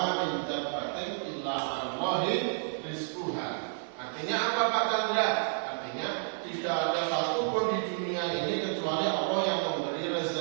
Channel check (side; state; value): left; silent; digital silence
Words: min dabbatin illa 'alallahi rizquha. Artinya apa Pak Chandra? Artinya tidak ada satu pun di dunia ini kecuali Allah yang memberi